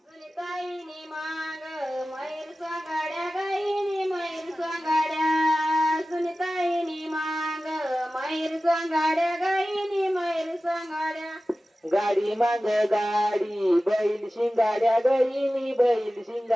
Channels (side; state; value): both; normal; correlation 0.95